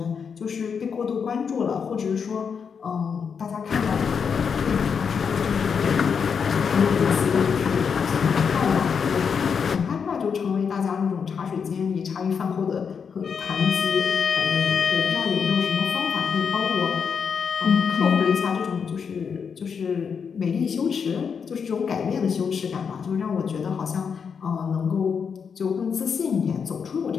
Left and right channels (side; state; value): right; quieter; 6.4 dB